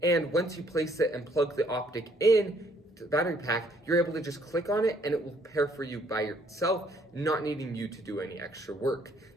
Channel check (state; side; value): normal; both; correlation 0.65